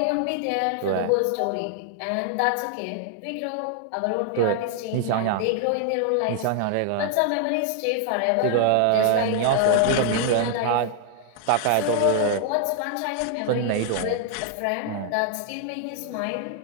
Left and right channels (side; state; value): both; different; correlation 0.00